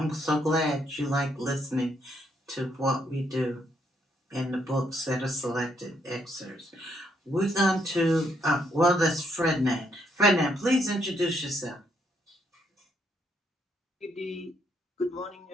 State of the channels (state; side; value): normal; both; correlation 0.74